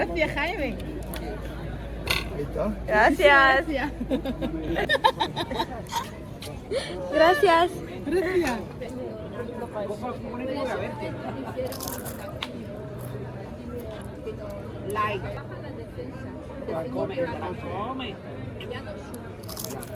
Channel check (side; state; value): both; identical; correlation 1.00